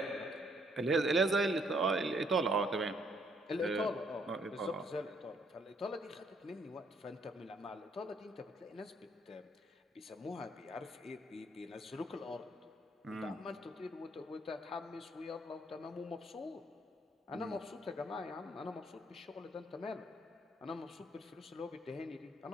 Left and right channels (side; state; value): both; normal; correlation 0.68